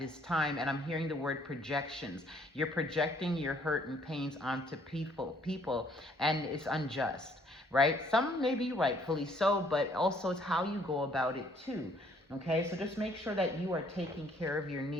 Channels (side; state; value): both; normal; correlation 0.63